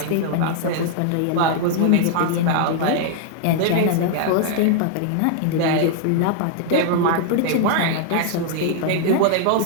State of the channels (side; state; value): both; different; correlation 0.00